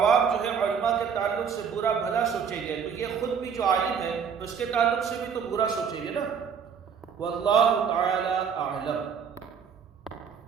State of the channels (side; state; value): left; quieter; 6.9 dB